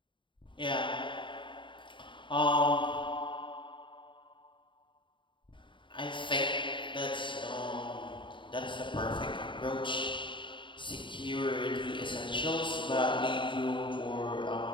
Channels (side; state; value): right; late; 0.24 ms